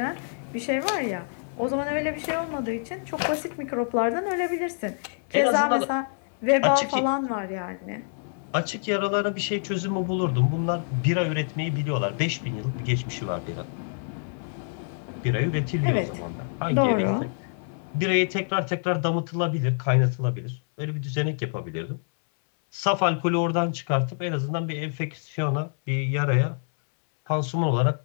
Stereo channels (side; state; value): right; silent; 61 dB below the other